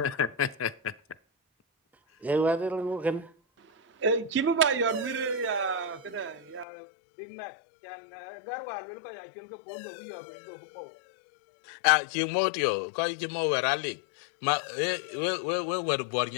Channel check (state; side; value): drops out; right; at 6.7 s